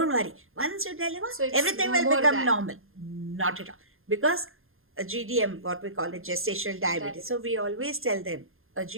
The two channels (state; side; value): late; left; 0.60 ms